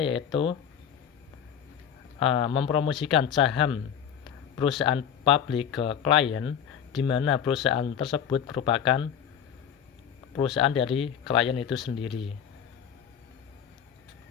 yaitu mempromosikan saham perusahaan publik ke klien, di mana perusahaan tersebut merupakan perusahaan dari klien itu sendiri.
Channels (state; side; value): quieter; right; 8.5 dB